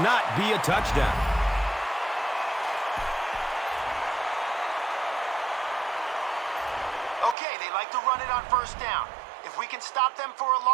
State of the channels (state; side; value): drops out; left; at 7.4 s